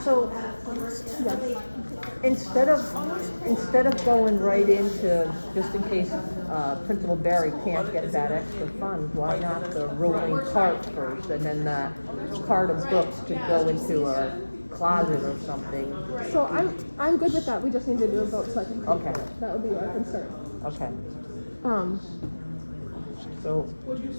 So, instead of going right into, just in case, Principal Barry can't get that extra funds, why not the rolling cart first, and then the cart of books to go into a closet or something? So I'm good with that, we just need to do a vote so I can. Okay. That would be our concern. Okay, Um, so, Would you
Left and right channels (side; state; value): both; inverted; correlation -1.00